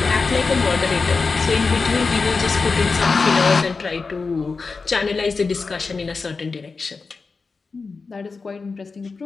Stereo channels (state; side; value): quieter; right; 4.4 dB